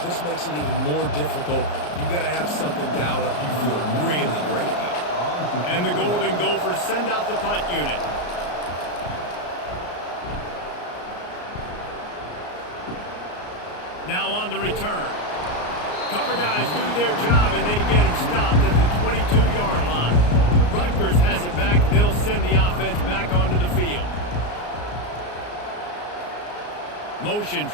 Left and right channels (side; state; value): right; late; 34 ms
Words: This makes it even more difficult. You got to have something dialed up you feel really great about. And the Golden Gophers send out the punt unit. Now on the return. Cover guys do their job, and they get him stopped at the 22-yard line. Rutgers has it back. They'll send the offense back onto the field. Motion